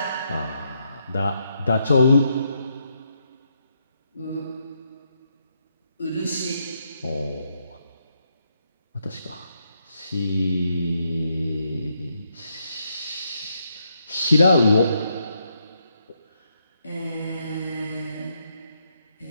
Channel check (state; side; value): inverted; both; correlation -0.78